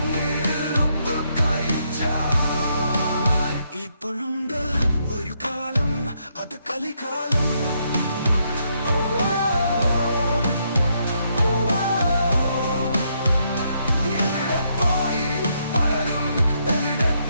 ഉപ്പ് കഴിച്ചാൽ ഇപ്പോഴുണ്ട് ഒരു കാലം അത് കലികാലം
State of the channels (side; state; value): both; inverted; correlation -0.76